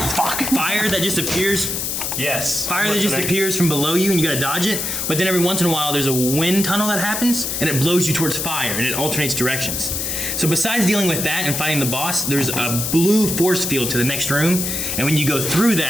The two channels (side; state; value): left; noise; hiss, 2 dB below the sound